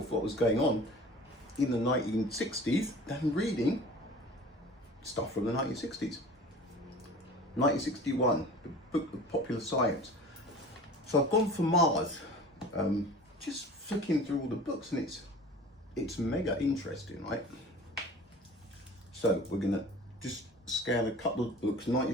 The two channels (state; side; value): normal; both; correlation 0.41